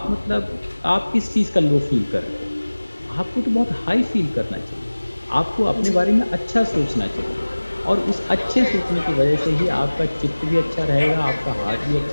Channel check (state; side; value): inverted; both; correlation -1.00